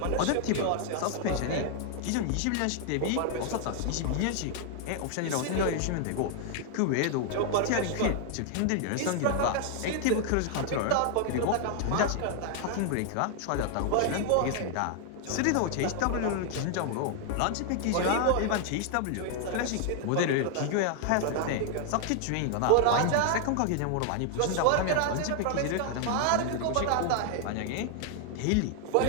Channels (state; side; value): different; both; correlation 0.00